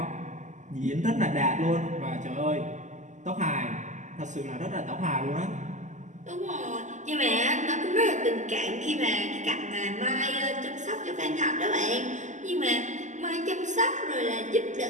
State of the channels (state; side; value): late; left; 0.35 ms